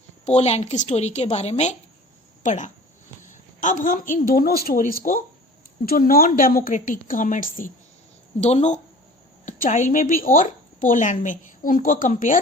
पोलैंड की स्टोरी के बारे में पढ़ा। अब हम इन दोनों स्टोरीज को, जो नॉन डेमोक्रेटिक गवर्नमेंट्स थी दोनों, चाइल्ड में भी और पोलैंड में, उनको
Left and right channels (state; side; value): normal; both; correlation 0.43